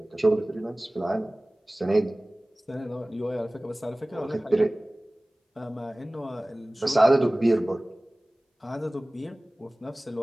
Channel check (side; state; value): both; normal; correlation 0.98